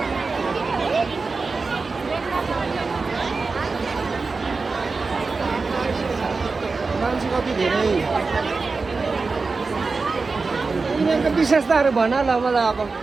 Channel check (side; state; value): left; quieter; 4.2 dB